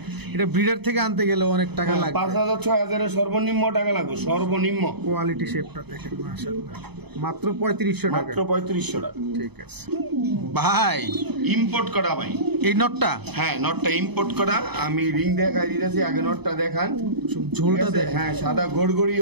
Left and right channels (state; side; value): late; left; 0.98 ms